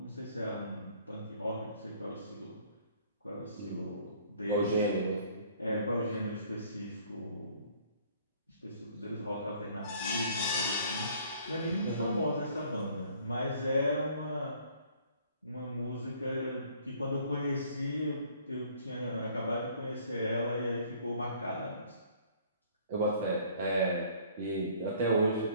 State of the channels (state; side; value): inverted; both; correlation -0.57